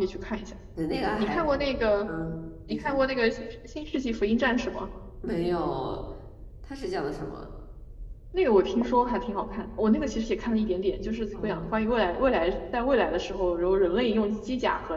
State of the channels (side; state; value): both; identical; correlation 1.00